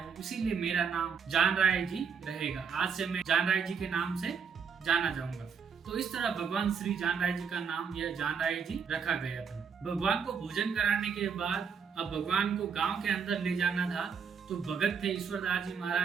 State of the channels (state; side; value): quieter; left; 6.2 dB